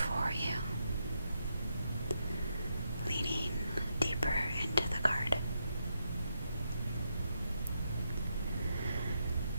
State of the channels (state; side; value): inverted; both; correlation -0.81